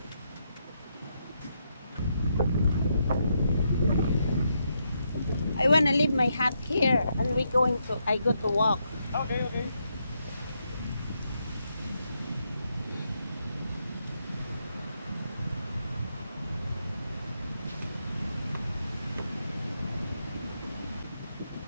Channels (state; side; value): inverted; both; correlation -0.80